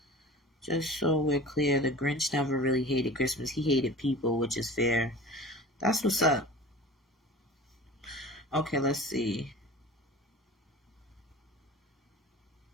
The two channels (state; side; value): normal; both; correlation 0.38